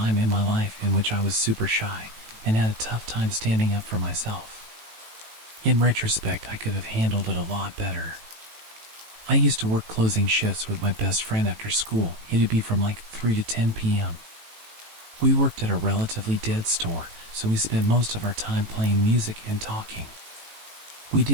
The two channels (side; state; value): left; late; 18 ms